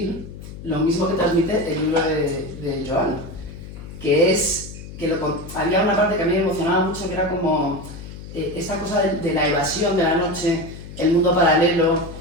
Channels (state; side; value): noise; left; hum, 13 dB below the sound